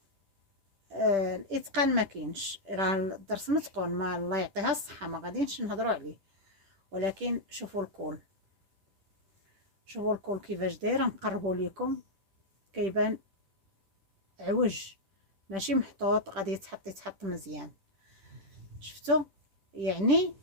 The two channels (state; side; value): late; left; 10 ms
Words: الاتقان ما كاينش. راه الدرس متقون، ما الله يعطيها الصحه ما غاديش نهضروا عليه. ولكن شوفوا الكول، شوفوا الكول كيفاش داير. نقربوا لكم كيبان عوج ماشي محطوط، غادي يتحط مزيان. شفتوا؟ يعني